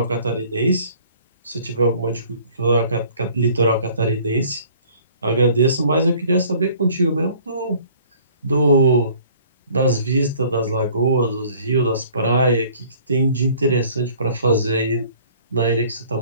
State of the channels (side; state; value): both; inverted; correlation -0.54